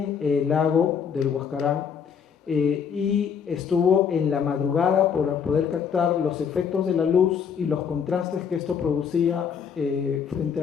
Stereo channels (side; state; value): right; quieter; 7.1 dB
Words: el lago del Huascarán y estuvo en la madrugada para poder captar los efectos de la luz y los contrastes que esto producía frente